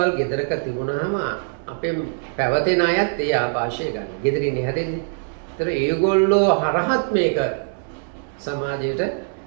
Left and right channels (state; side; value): silent; left; 64 dB below the other